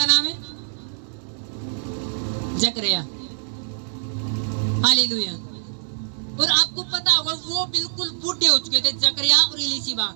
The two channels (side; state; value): left; silent; digital silence